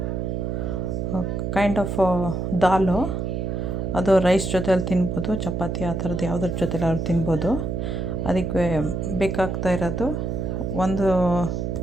ಕೈಂಡ್ ಆಫ್ ದಾಲು. ಅದು ರೈಸ್ ಜೊತೆಯಲ್ಲಿ ತಿನ್ಬೋದು, ಚಪಾತಿ ಆ ಥರದ್ದು ಯಾವುದ್ರ ಜೊತೆಲಿ ಅವ್ರು ತಿನ್ಬೋದು. ಅದಕ್ಕೆ ಬೇಕಾಗ್ತಾ ಇರೋದು ಒಂದು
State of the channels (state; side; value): noise; right; hum, 2 dB below the sound